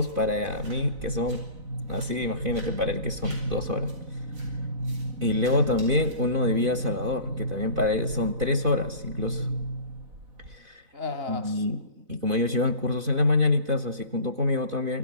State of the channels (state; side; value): late; left; 4.0 ms